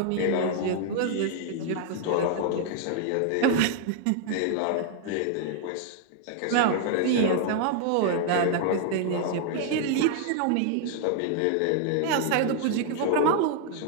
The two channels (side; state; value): both; different; correlation 0.00